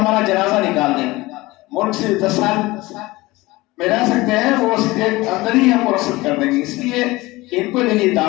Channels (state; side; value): quieter; right; 20.5 dB